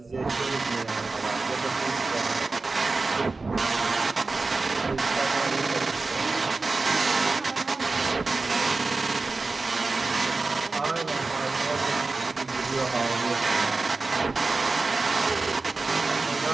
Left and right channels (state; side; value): quieter; left; 3.7 dB